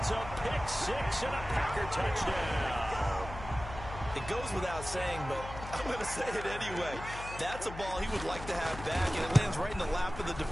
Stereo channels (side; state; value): left; noise; hum, 11 dB below the sound